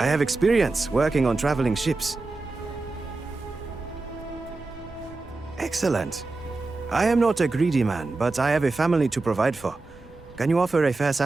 have experience working on traveling ships. Excellent. I am not a greedy man, but I have a family to provide for. Can you offer a fair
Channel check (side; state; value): left; quieter; 3.5 dB